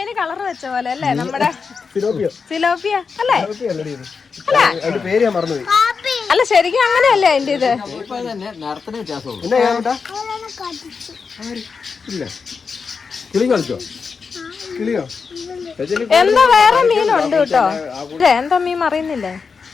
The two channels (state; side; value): quieter; right; 5.3 dB